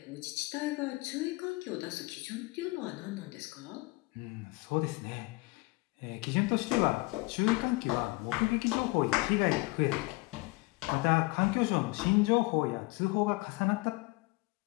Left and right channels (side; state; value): right; quieter; 24.1 dB